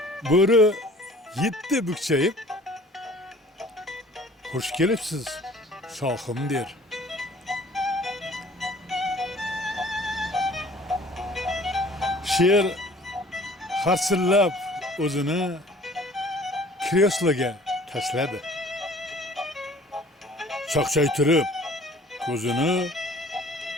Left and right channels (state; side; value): normal; both; correlation 0.51